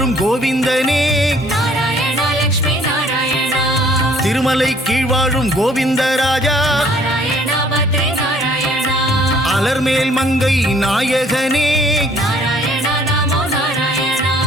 கோவிந்தனே நாராயண லக்ஷ்மி நாராயண திருமலை கீழ் வாழும் கோவிந்தராஜா நாராயண பத்ரி நாராயண அலர்மேல் மங்கை நாயகனே நாராயண நமோ நாராயண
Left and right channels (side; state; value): both; normal; correlation 0.59